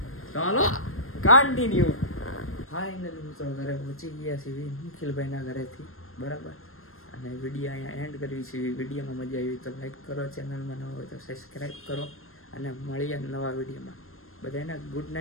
ચાલો કન્ટિન્યુ. ફાઇનલી મિત્રો ઘરે પહોંચી ગયા છીએ નિખિલભાઈના ઘરેથી, બરાબર. અને વિડીયો અહીંયા એન્ડ કરવી છે. વિડીયોમાં મજા આવી તો લાઈક કરો, ચેનલમાં ન હોય તો સબસ્ક્રાઈબ કરો અને મળીએ નવા વિડીયોમાં. બધાને ગુડ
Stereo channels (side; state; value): right; late; 0.62 ms